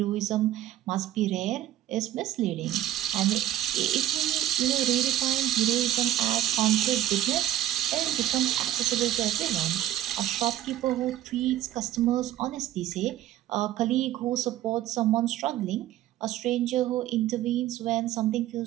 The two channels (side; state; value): left; quieter; 13.0 dB